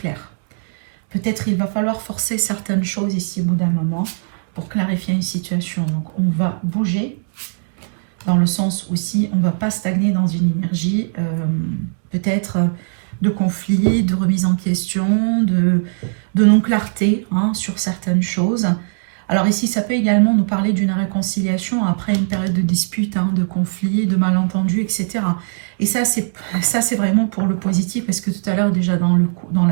Peut-être il va falloir forcer certaines choses ici au bout d'un moment pour clarifier une situation. Donc on va bouger dans le sens aussi, on ne va pas stagner dans une énergie peut-être de conflit, de remise en question, de non-clarté, hein, sur certaines choses. Alors ici, ça peut également nous parler d'une réconciliation après une période de dispute, hein, de conflit, de malentendu, etc. Et ça, c'est vraiment pour le positif, parce que tout à l'heure, déjà dans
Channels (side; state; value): left; silent; digital silence